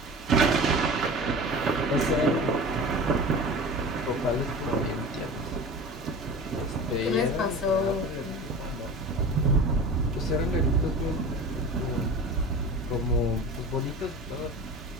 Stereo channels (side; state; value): both; normal; correlation 0.35